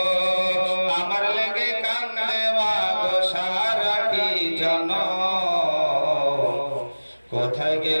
আমার লেগে কান্দে মাগো সারাটি জন। কোথায়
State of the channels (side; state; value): both; inverted; correlation -1.00